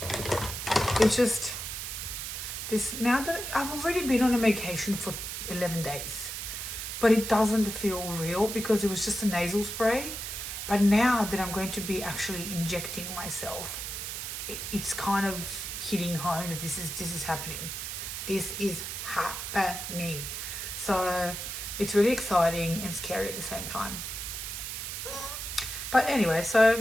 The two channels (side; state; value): right; noise; hiss, 6 dB below the sound